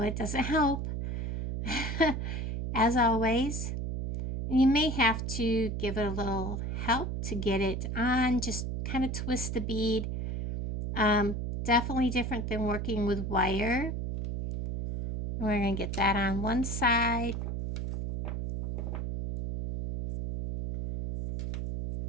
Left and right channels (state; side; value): noise; right; hum, 3 dB below the sound